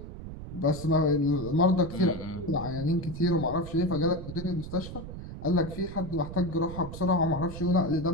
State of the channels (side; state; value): right; noise; rumble, 11 dB below the sound